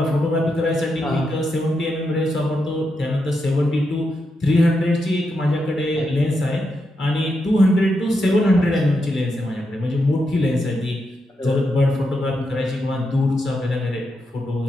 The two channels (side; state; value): both; normal; correlation 0.84